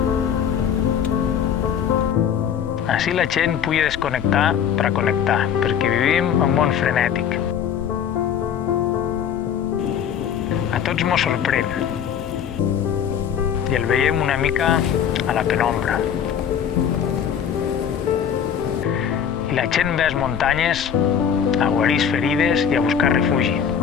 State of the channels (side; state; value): right; quieter; 8.3 dB